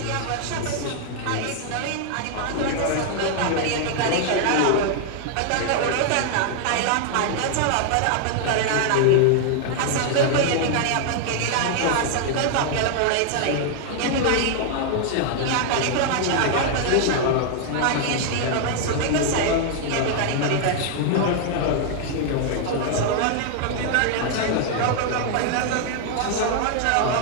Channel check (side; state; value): both; different; correlation 0.00